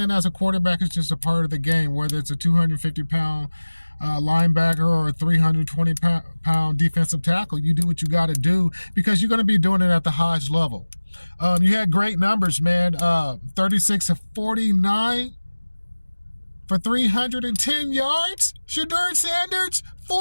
as a quarterback is just a part of the game, whether it's a 250-pound linebacker or a 320-pound defensive tackle. You do what you got to do because you're going to be doing it at the highest level. You had great numbers, man. 36 of 49 for 310 yards. Shedeur Sanders,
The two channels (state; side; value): inverted; both; correlation -1.00